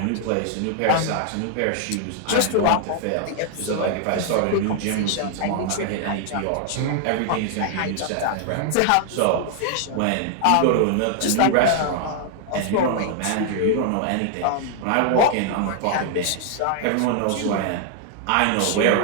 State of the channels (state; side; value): different; both; correlation 0.00